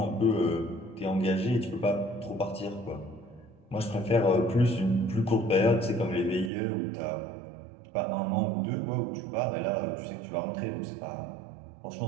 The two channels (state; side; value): drops out; left; at 6.5 s